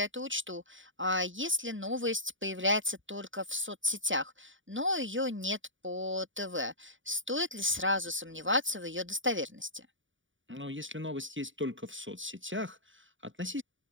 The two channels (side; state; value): left; late; 0.56 ms